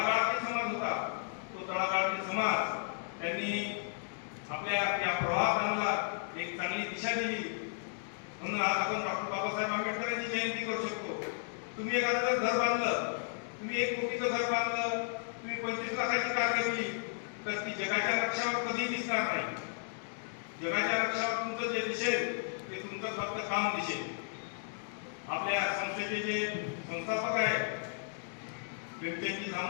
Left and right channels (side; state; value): right; silent; digital silence